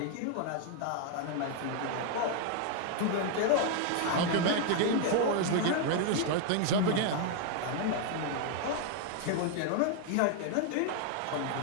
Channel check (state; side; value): different; both; correlation 0.00